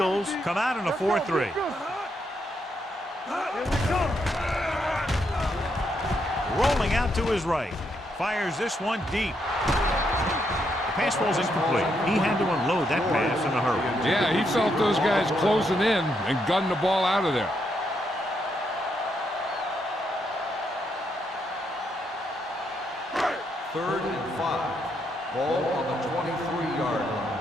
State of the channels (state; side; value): normal; both; correlation 0.78